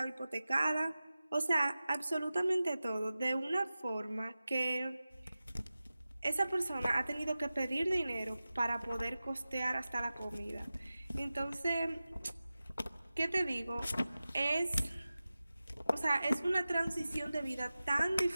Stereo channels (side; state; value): both; inverted; correlation -0.95